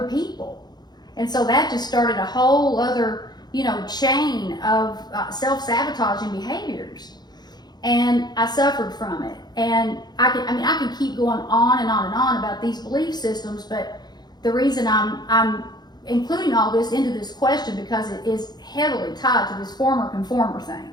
people. And so that just started a whole other, chain of self-sabotaging behaviors. And I suffered from it. And I can keep going on and on and on about these belief systems, but the reason I'm including all this into this question because it is heavily tied to this former conformer thing.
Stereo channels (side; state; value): right; late; 0.20 ms